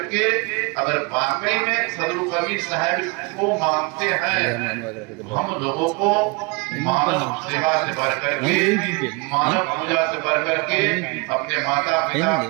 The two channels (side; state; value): left; quieter; 28.7 dB